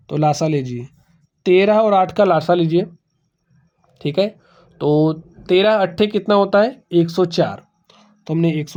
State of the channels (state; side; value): identical; both; correlation 1.00